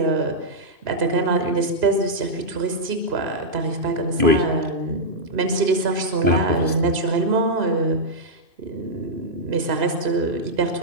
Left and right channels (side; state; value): left; late; 2.5 ms